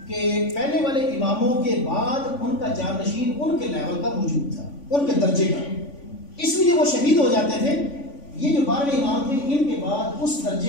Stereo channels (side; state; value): right; late; 3.5 ms